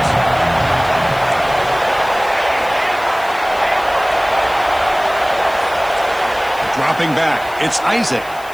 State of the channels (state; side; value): noise; left; hiss, 21 dB below the sound